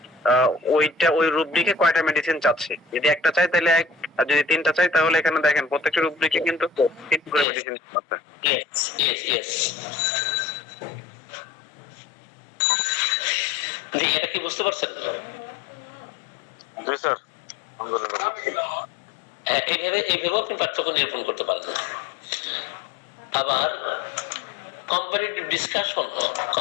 ওইটা ওই রুব্রিকে কয়টা মেডিসিন চাচ্ছি। যদি একটা চাই তাহলে এক, আর যদি 3টা চাই তাহলে এখানে দেখেন প্রত্যেকটা রুব্রিকে কিন্তু 3 করে মেডিসিন আছে। Yes yes yes. জি, এটা কি বুঝতে পারছেন? জি স্যার। এইভাবে এইভাবেও আপনি পার্থক্য নিরূপণ করতে পারেন। আবার কম্পারেটিভ ডিসকাশন,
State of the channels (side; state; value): right; drops out; at 7.5 s